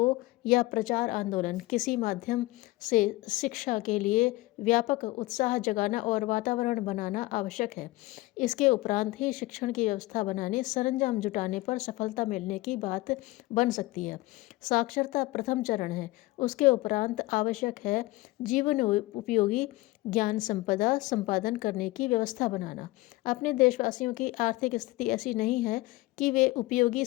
या प्रचार आंदोलन, किसी माध्यम से शिक्षा के लिए व्यापक उत्साह जगाना और वातावरण बनाना आवश्यक है। इसके उपरांत ही शिक्षण की व्यवस्था बनाने, सरंजाम जुटाने पर सफलता मिलने की बात बन सकती है। साक्षरता प्रथम चरण है। उसके उपरांत आवश्यक है जीवन उपयोगी ज्ञान संपदा संपादन करने की व्यवस्था बनाना। अपने देशवासियों की आर्थिक स्थिति ऐसी नहीं है कि वे उपयोगी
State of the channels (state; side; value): quieter; right; 20.0 dB